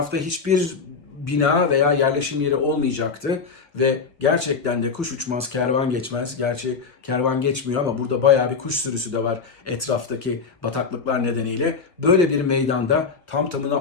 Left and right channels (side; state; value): right; quieter; 5.1 dB